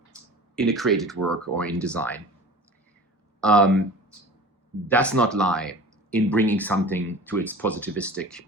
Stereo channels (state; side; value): normal; both; correlation 0.40